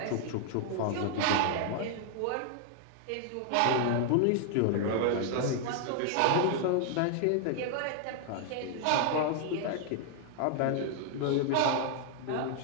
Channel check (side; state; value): both; different; correlation -0.01